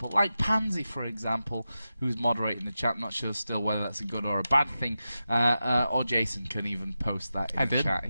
like Pansy, for example, who's moderating the chat. I'm not sure still whether that's a good or a bad thing. Or Jason can even post that in the chat.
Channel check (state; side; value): inverted; both; correlation -0.91